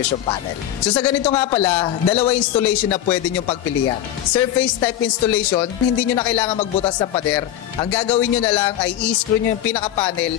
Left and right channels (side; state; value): right; quieter; 11.8 dB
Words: panel. So sa ganito nga pala, dalawa installation na pwede nyo pagpilian. Surface type installation, hindi nyo na kailangan magbutas ng pader. Ang gagawin nyo na lang ay i-screw nyo yung pinaka-panel